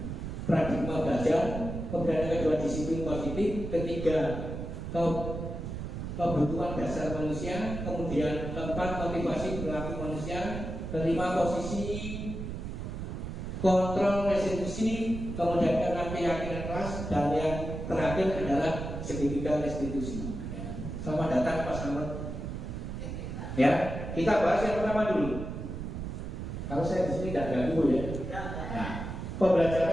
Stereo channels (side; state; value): right; noise; rumble, 6 dB below the sound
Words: paradigma belajar, kemudian yang kedua disiplin positif, ketiga kebutuhan dasar manusia, kemudian keempat motivasi perilaku manusia, kelima posisi kontrol restitusi, kemudian keenam keyakinan kelas, dan yang terakhir adalah segitiga restitusi. Selamat datang Pak Samad. Ya, kita bahas yang pertama dulu. Kalau saya di sini tidak ganggu ya. Nah,